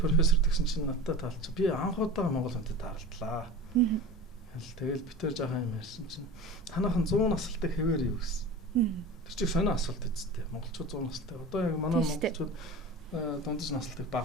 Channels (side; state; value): both; normal; correlation 0.34